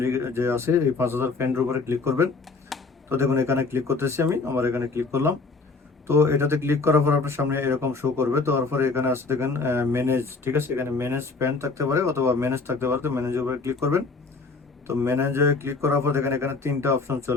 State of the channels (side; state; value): right; quieter; 4.0 dB